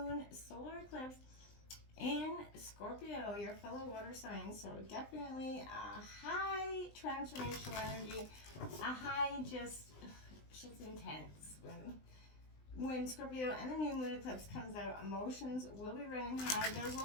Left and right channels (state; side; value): late; right; 20 ms